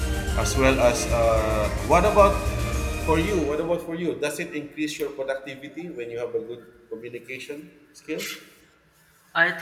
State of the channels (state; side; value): identical; both; correlation 1.00